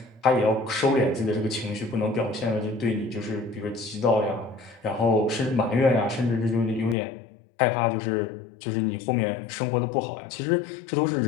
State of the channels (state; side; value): drops out; right; at 7.0 s